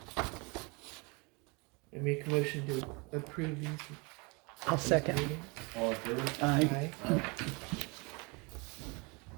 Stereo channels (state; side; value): quieter; left; 29.3 dB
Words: I make a motion to approve these. I'll second. meetings. All in favor? Aye. Aye.